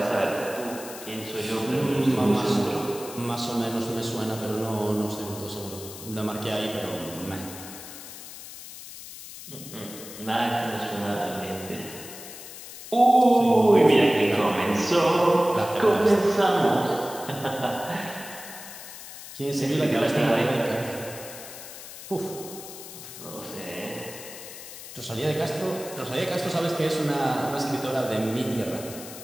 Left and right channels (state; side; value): noise; left; hiss, 13 dB below the sound